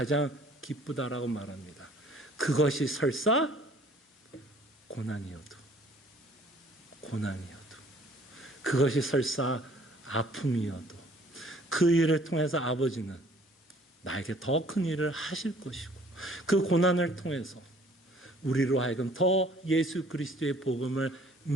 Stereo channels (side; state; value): both; normal; correlation 0.56